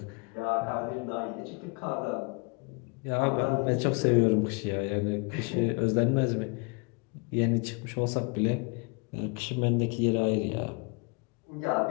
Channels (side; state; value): right; quieter; 31.7 dB